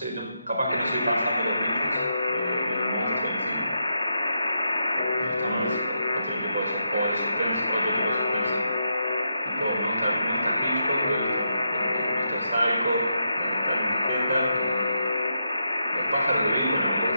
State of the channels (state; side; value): inverted; both; correlation -0.83